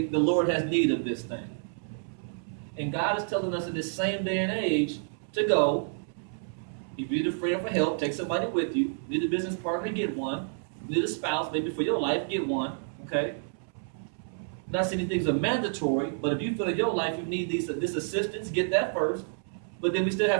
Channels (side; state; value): left; silent; 58 dB below the other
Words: the Lord has need of this thing. And God is telling us in this same day and age to go. If you need a friend for help, take somebody with you. Need a business partner, get one. Need a spouse, maybe for your life, get one. Okay? Not saying these things are mandatory, but if you feel in your life you need this assistance, get that first. But then we still